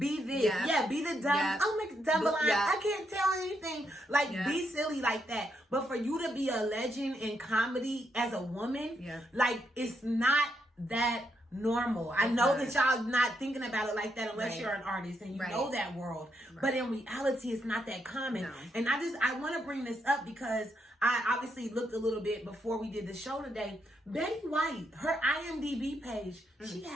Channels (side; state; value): both; normal; correlation 0.79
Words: this, be the dumb. Yep. I'll make a dumb line. I can't tell anything. Like, be silly like that. But for you to be a legend in comedy as a woman, like, it's not that normal. I know that y'all not thinking about it like that unless you're an artist and you know that world. But in reality, it's not that common. No. And I want to bring this up because I obviously looked a little bit before we did the show today. Betty White, her IMDb page, she